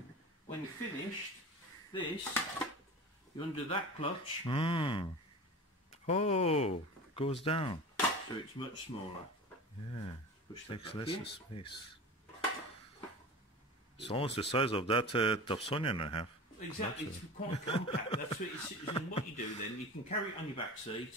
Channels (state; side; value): normal; both; correlation 0.33